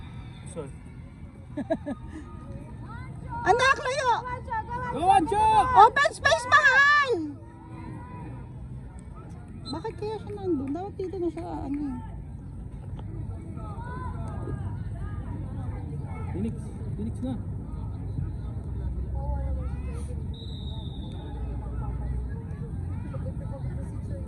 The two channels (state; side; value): identical; both; correlation 1.00